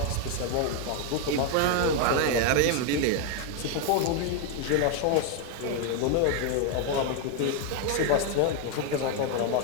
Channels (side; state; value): both; different; correlation 0.00